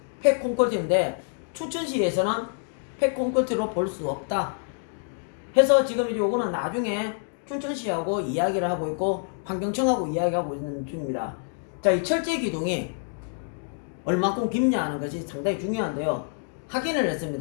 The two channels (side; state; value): right; silent; digital silence